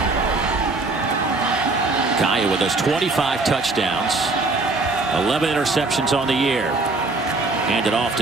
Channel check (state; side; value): quieter; left; 3.4 dB